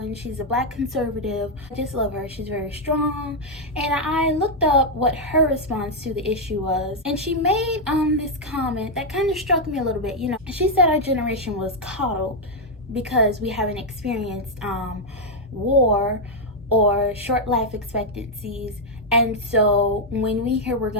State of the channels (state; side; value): normal; both; correlation -0.01